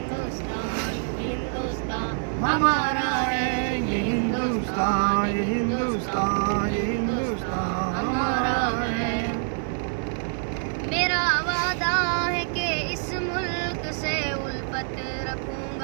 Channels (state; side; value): silent; left; 57 dB below the other